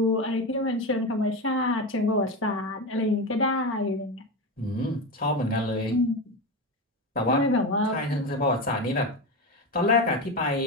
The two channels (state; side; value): normal; both; correlation 0.19